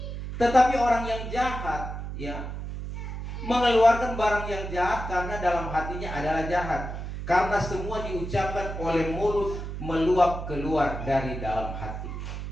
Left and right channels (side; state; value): right; noise; hum, 7 dB below the sound